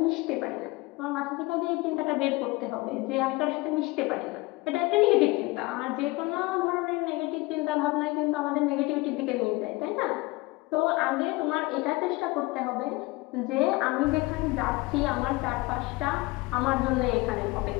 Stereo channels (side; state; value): right; quieter; 22.8 dB